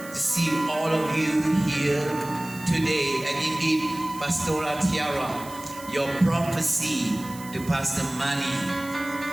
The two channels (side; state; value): right; noise; hiss, 17 dB below the sound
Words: to see all of you here today. And indeed, Pastora Tiara, your prophecy to Pastor Mani,